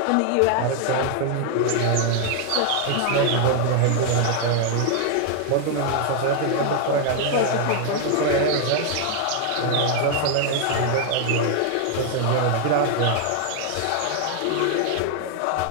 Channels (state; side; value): different; both; correlation 0.00